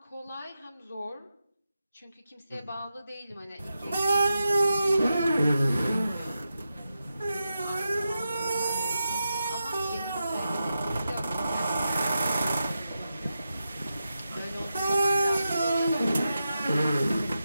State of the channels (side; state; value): both; inverted; correlation -0.89